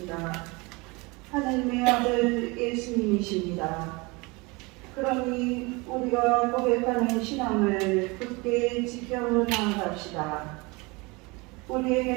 하나님의 아들 예수님이십니다. 그러니 우리가 고백하는 신앙을 굳게 지켜나갑시다.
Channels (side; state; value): left; quieter; 26.0 dB